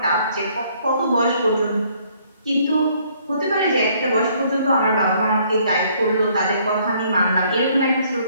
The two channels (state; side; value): inverted; both; correlation -0.64